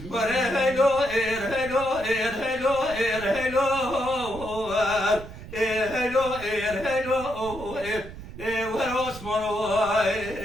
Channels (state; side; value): noise; right; rumble, 13 dB below the sound